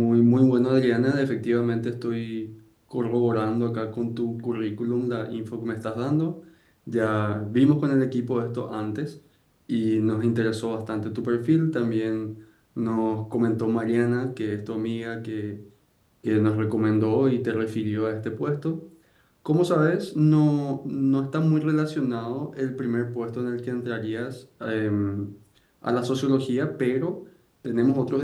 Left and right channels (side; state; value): both; identical; correlation 1.00